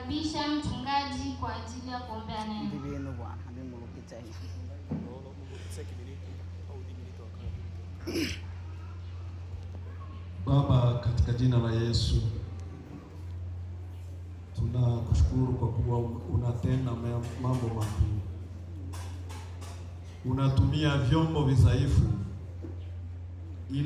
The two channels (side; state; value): both; identical; correlation 1.00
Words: mchungaji kwa ajili ya kuombea neno. Baba, katika jina la Yesu tunakushukuru kwa kuwa unatenda mambo makuu. Unatumia vyombo vidhaifu